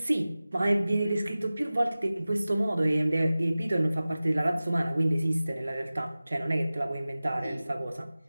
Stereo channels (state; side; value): inverted; both; correlation -0.97